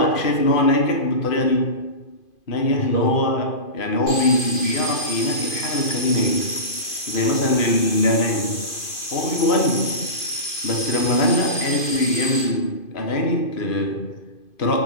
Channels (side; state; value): right; late; 2.5 ms